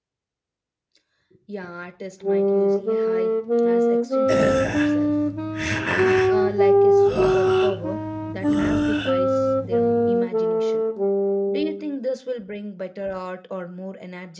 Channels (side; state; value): both; identical; correlation 1.00